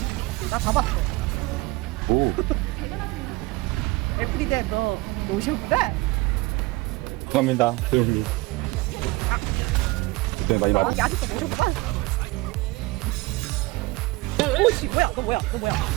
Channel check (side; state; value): left; quieter; 21.8 dB